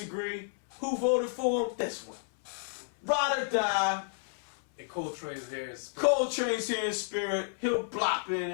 Who voted for him? This one. Ride or die. And Coltrane's here in spirit. Coltrane's here in spirit. He'll blop in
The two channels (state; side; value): silent; right; 57 dB below the other